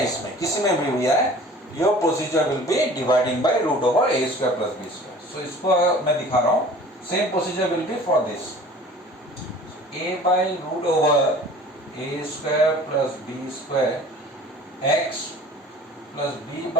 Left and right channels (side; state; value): both; normal; correlation 0.46